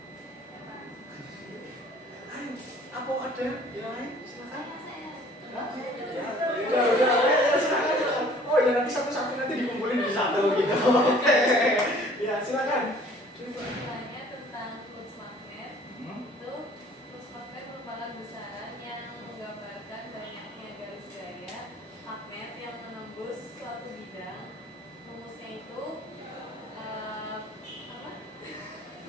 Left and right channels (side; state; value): both; normal; correlation 0.53